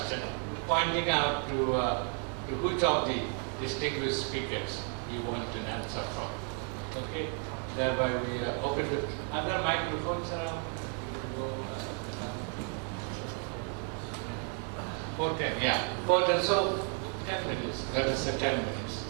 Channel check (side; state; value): left; quieter; 39.9 dB